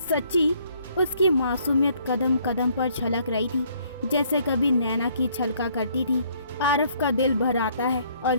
सच्ची? उसकी मासूमियत कदम कदम पर छलक रही थी जैसे कभी नैना की छलका करती थी। आरव का दिल भर आता है और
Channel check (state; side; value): inverted; both; correlation -0.65